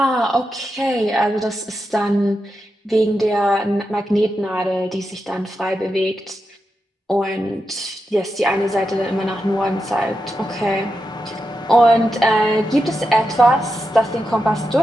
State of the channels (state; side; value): normal; both; correlation 0.87